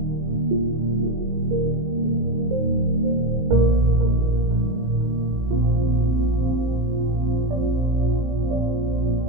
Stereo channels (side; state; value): left; late; 19 ms